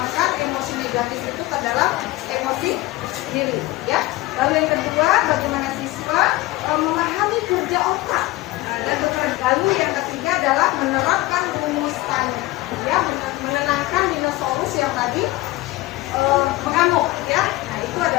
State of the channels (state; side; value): quieter; right; 18.8 dB